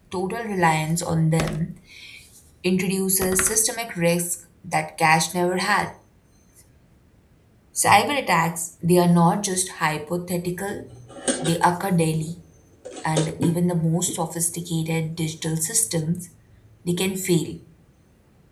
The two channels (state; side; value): identical; both; correlation 1.00